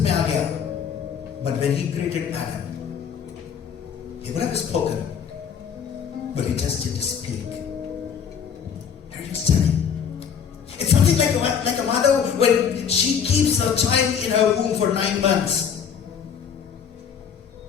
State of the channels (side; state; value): right; quieter; 7.5 dB